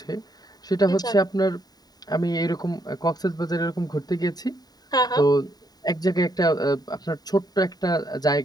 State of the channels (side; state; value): right; late; 0.19 ms